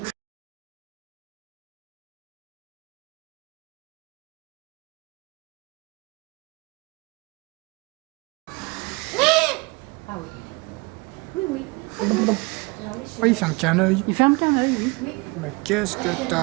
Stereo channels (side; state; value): left; quieter; 27.2 dB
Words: Ah oui. Oui, oui. Oui, il ferme qu'un œil. Il ferme qu'un œil, oui. Oui. Mais qu'est-ce que